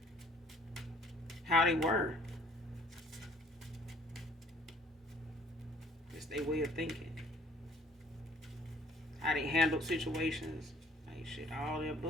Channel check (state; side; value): normal; both; correlation 0.57